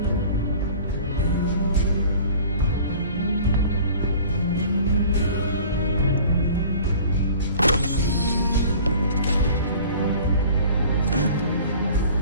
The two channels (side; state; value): both; inverted; correlation -0.46